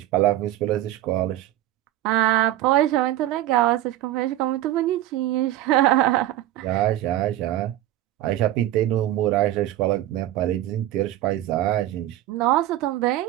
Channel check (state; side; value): quieter; left; 14.1 dB